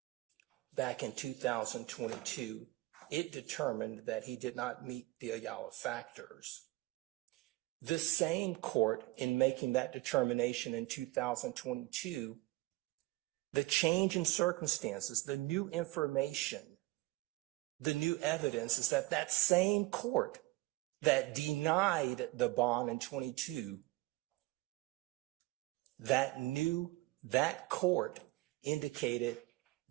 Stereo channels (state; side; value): quieter; left; 20.2 dB